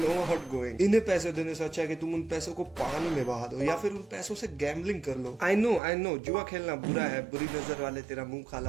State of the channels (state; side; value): drops out; left; at 5.8 s